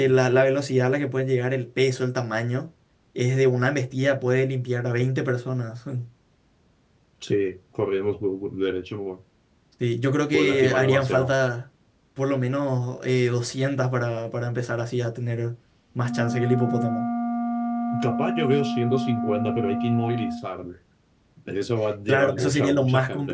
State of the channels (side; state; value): both; identical; correlation 1.00